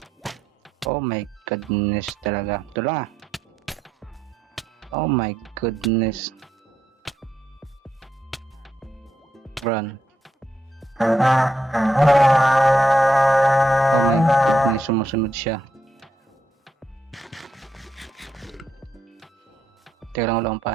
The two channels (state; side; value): normal; both; correlation 0.80